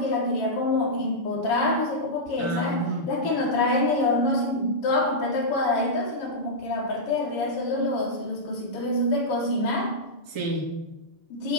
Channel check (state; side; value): late; right; 7.3 ms